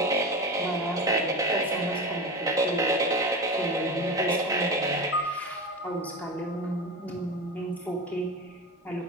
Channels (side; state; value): both; normal; correlation 0.25